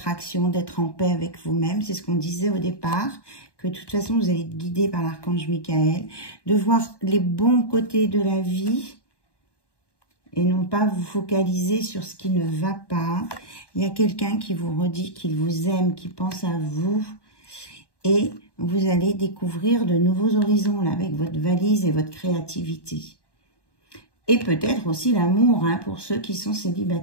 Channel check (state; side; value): late; right; 1.1 ms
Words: d'être en paix avec vous-même. C'est ce qu'on disait au départ, que de toute façon, vous allez être guidé par l'archange Michael. De voir les bons côtés de la vie et non pas vous focaliser sur ce qui ne va pas. Il y a quelqu'un qui vous redit qu'il vous aime, qui pense à vous. Et vous allez découvrir de nouveaux horizons là, avec votre valise et votre créativité. Et peut-être aussi l'amour, hein, pour ceux qui sont